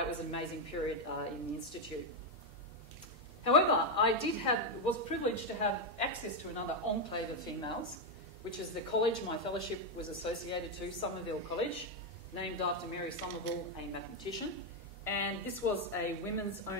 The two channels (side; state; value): both; normal; correlation 0.03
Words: was an amazing period in the Institute. However, I was privileged to have access to another enclave of females, which is the college my fellowship was associated to, Somerville College, named after Mary Somerville, a mathematician. And this was a